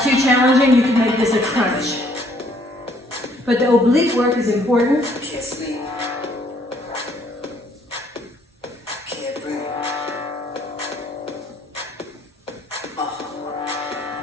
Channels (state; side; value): normal; both; correlation 0.64